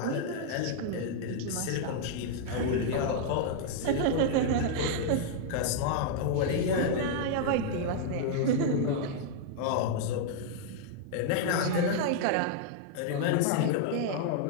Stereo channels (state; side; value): different; both; correlation -0.01